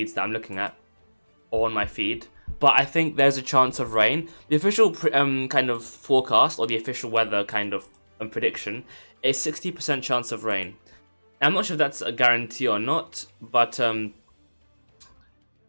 that I'm looking at, or on my feed. But I think there's a chance of rain. The official kind of forecast, or the official weather kind of prediction, is 60% chance of rain. I'm not sure if that's a guarantee or not, but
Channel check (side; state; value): both; inverted; correlation -1.00